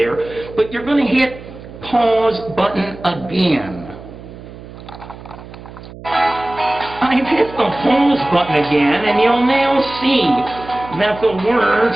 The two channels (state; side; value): noise; right; hum, 16 dB below the sound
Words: But you're going to hit pause button again. I've hit the pause button again, and you'll now see that the words